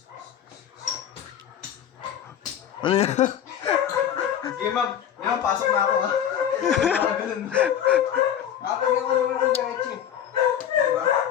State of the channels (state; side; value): quieter; right; 9.6 dB